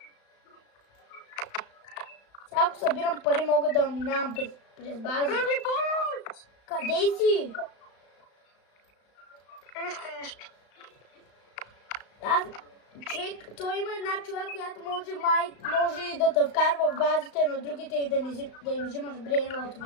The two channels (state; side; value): late; right; 35 ms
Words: Сега ако събирам пари, мога да минавам през базите. Къде си? Нищо. Човек, той има една човек, която може да те вкарва в базите на другите и да им взимаш